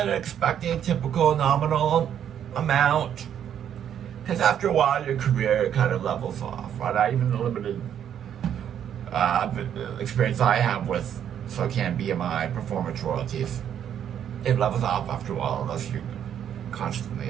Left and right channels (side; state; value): left; quieter; 9.4 dB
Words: it expecting a typical nominal amount, because after a while, your career kind of levels off, right? Even the limited experience I have with SOCAN BMI performance royalties, it levels off after a while unless you're constantly